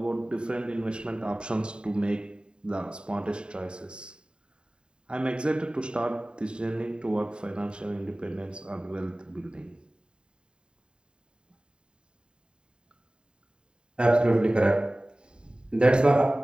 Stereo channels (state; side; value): late; left; 0.050 ms